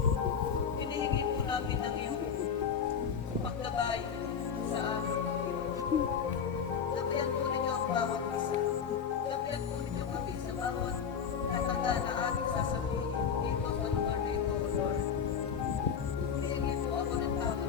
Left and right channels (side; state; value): right; quieter; 7.1 dB